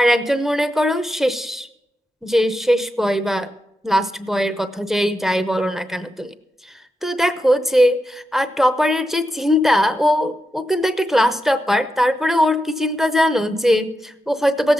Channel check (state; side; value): normal; both; correlation 0.87